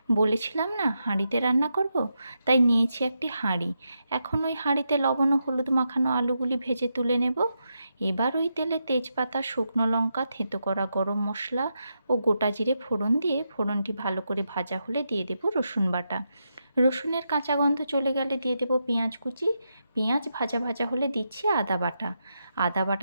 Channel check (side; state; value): both; inverted; correlation -0.84